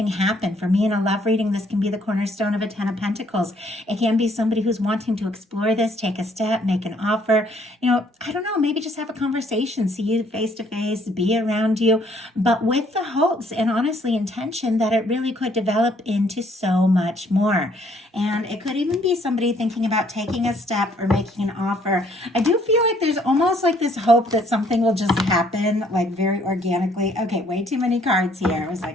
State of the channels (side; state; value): both; normal; correlation 0.64